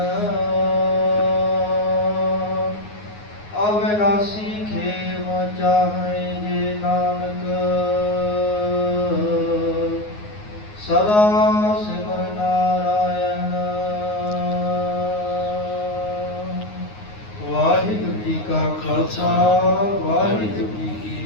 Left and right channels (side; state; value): right; late; 9.6 ms